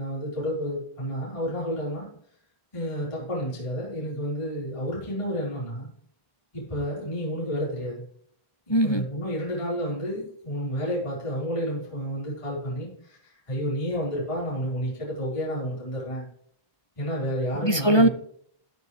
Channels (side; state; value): right; late; 1.2 ms